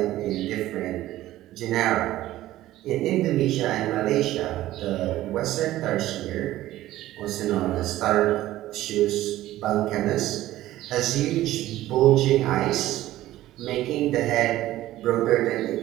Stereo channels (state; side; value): quieter; left; 15.0 dB